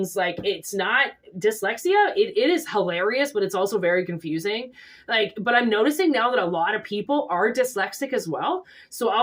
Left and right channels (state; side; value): identical; both; correlation 1.00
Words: Like, it's not dyslexia. It is hilarious, but it's also very confusing. Like, but I'm noticing now that a lot of people are dyslexic as well. So